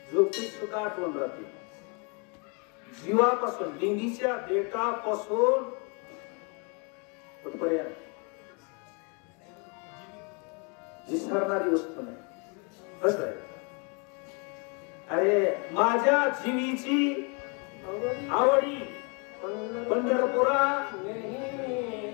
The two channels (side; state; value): right; quieter; 34.3 dB